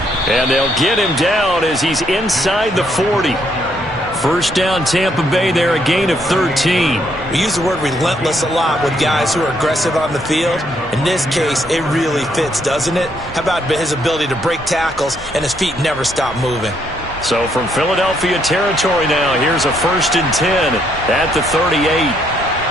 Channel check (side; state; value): both; normal; correlation 0.72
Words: And they'll get him down as he's inside the 40. First down, Tampa Bay there, a gain of 13. We use the word relentless a lot with guys who are aggressive on the field. In this case, it really fits, doesn't it? How about his ability to break tackles and his feet never stop moving? So from Philadelphia territory now, here's a 1st and 10 at the 38.